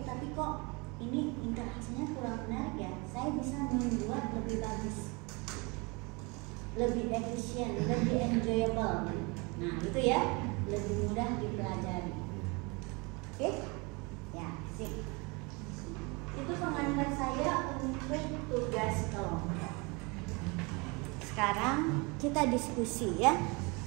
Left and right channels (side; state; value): left; quieter; 28.4 dB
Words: tapi kok ini interaksinya kurang menarik ya. Saya bisa membuat lebih bagus, lebih efisien, lebih enjoyable. Nah itu ya, lebih mudah dipelajari. Oke? Ya, sip. Itu pengantar saya untuk tugas kelompok. Sekarang kita diskusi ya